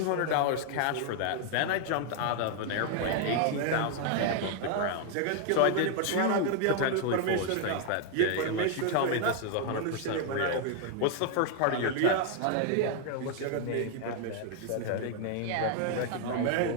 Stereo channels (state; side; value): different; both; correlation 0.00